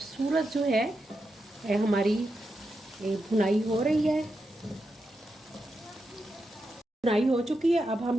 जो है हमारी भुनाई हो रही है। भुनाई हो चुकी है। अब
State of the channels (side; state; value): both; normal; correlation 0.87